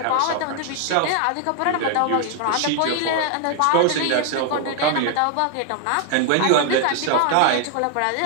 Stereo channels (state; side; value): different; both; correlation 0.00